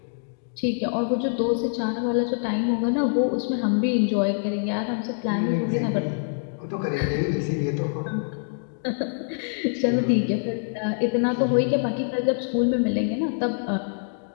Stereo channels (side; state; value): right; silent; digital silence